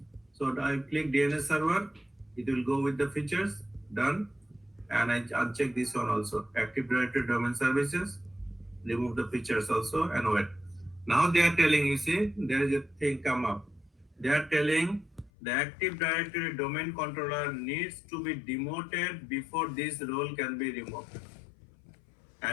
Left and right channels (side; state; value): right; drops out; at 15.3 s